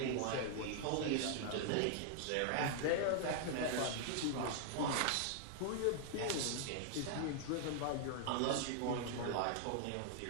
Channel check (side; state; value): both; different; correlation 0.00